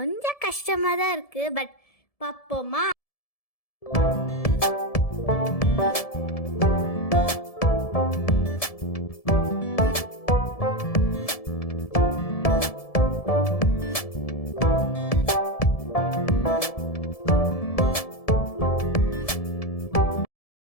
கஷ்டமாக தான் இருக்குது, பட் பார்ப்போமா?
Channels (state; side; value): late; right; 1.7 ms